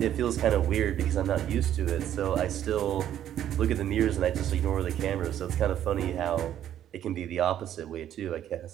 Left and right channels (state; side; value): quieter; left; 11.0 dB